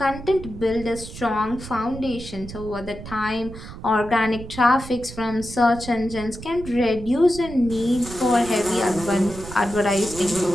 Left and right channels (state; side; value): noise; right; rumble, 12 dB below the sound